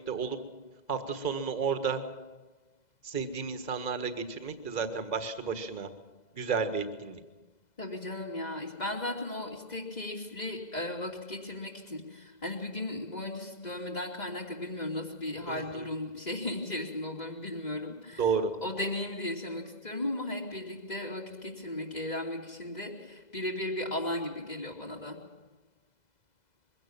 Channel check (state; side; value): late; right; 2.0 ms